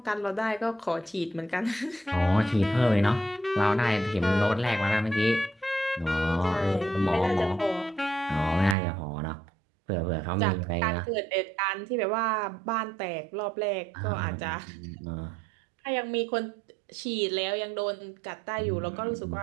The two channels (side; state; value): left; drops out; at 8.8 s